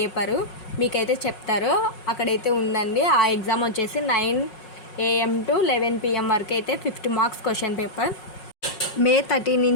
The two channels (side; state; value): right; late; 5.5 ms